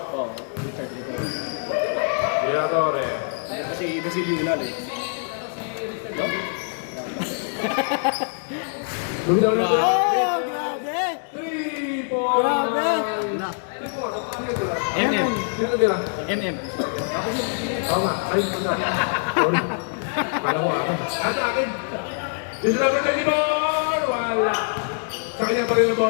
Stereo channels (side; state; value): right; silent; 63 dB below the other